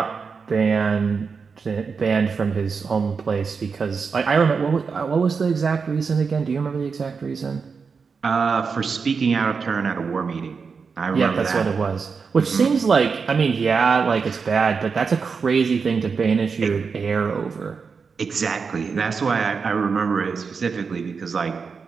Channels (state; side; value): quieter; left; 5.3 dB